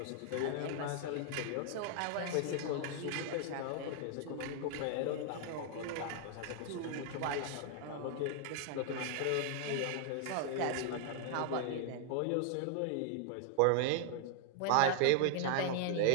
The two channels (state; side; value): different; both; correlation 0.00